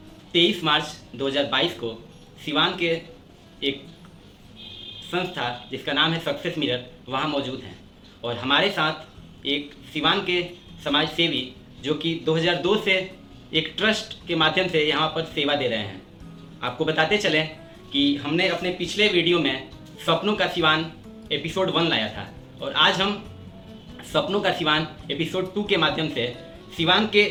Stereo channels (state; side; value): identical; both; correlation 1.00